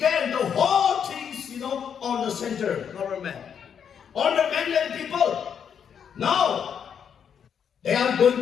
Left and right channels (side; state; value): right; quieter; 7.8 dB